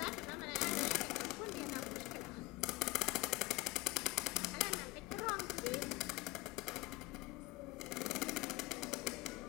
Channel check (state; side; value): quieter; right; 20.6 dB